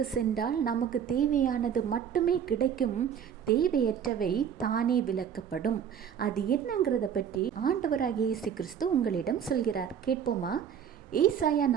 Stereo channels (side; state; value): left; quieter; 8.3 dB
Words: சென்றால் நமக்கு தேவையானது மட்டுமே கிடைக்கும், தேவையற்றவை தானே விலக்கப்படும். அது என்னங்கிறத பற்றி ஆண்டவராகிய இயேசு கிறிஸ்து உங்களிடம் சொல்கிறார். கேட்போமா? ஏசாயா